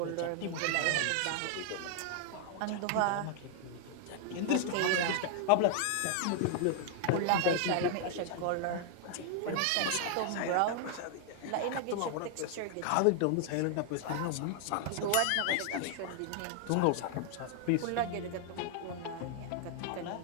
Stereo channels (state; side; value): different; both; correlation 0.00